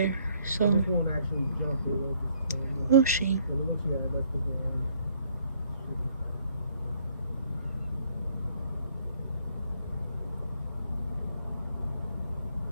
So. This won't actually jump it. Oh, she.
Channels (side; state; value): both; inverted; correlation -0.65